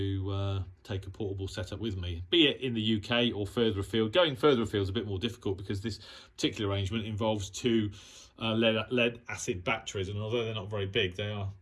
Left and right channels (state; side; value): identical; both; correlation 1.00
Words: take a portable setup with me, be it in the UK or further afield. Going further afield is a bit more difficult because this particular arrangement involves two lead acid batteries, and although they're not very big, they are